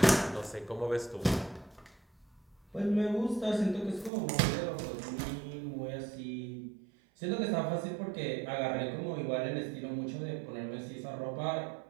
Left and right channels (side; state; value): left; drops out; at 4.1 s